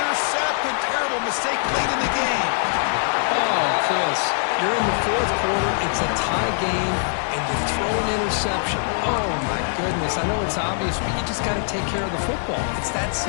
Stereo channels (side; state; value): right; silent; digital silence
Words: Terrible mistake late in the game. Oh, Chris, you're in the 4th quarter. It's a tie game, and you throw an interception. Oh, my goodness. I know it's obvious, but you just got to take care of the football. It's that